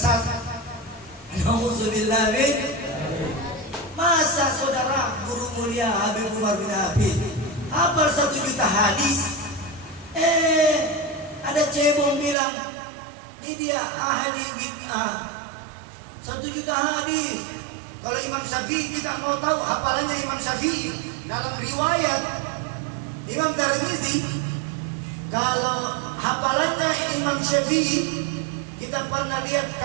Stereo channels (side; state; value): left; drops out; at 12.4 s